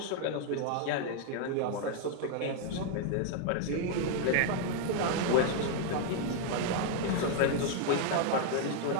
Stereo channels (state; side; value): different; both; correlation 0.00